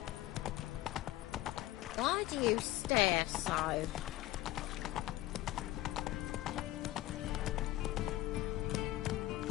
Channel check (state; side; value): quieter; right; 16.3 dB